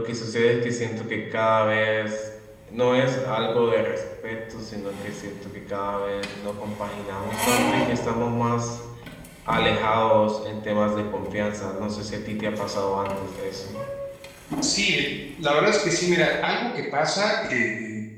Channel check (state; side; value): identical; both; correlation 1.00